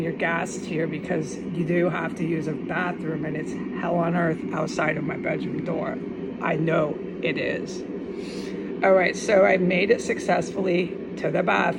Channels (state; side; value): identical; both; correlation 1.00